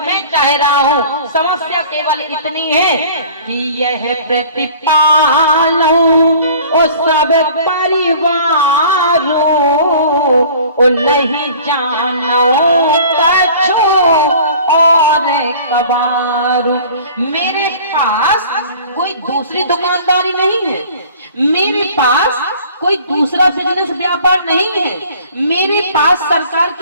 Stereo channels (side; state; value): both; inverted; correlation -0.47